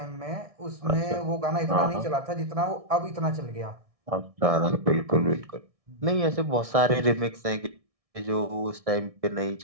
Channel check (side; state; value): left; late; 1.6 ms